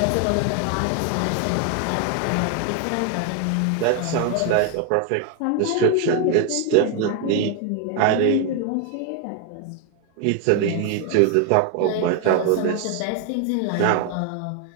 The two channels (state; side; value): different; both; correlation 0.01